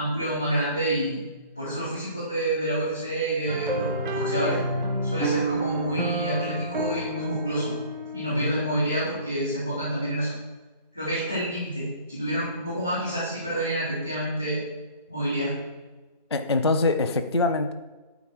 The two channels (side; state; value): both; inverted; correlation -0.48